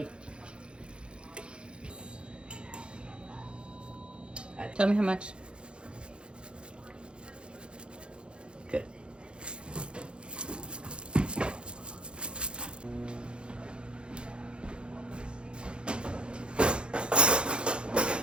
Tell me how much. Good.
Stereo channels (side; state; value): left; late; 0.055 ms